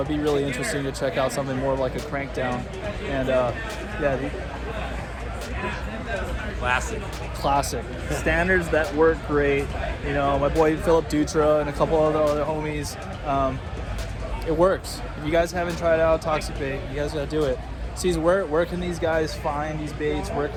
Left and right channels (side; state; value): both; identical; correlation 1.00